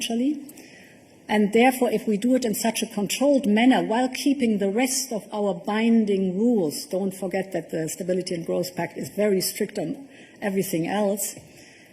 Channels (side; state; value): both; identical; correlation 1.00